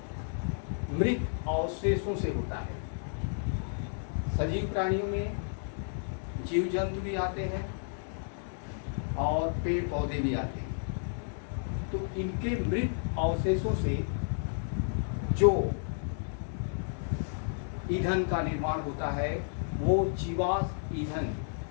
मृत अवशेषों से होता है। सजीव प्राणियों में जीव जंतु भी आते हैं और पेड़ पौधे भी आते हैं। तो इनके मृत अवशेषों से जो ईंधन का निर्माण होता है वो जीवाश्म ईंधन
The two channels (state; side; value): silent; right; digital silence